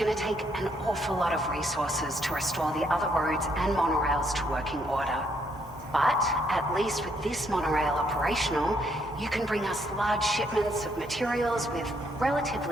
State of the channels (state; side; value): normal; both; correlation 0.72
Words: to take an awful lot of resources to restore the other roads and monorails to working order. But at least with this monorail operational, you can bring us large shipments of materials with